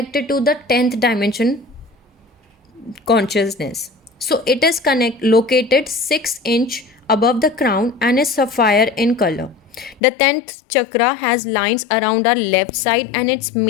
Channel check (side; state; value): right; drops out; at 10.0 s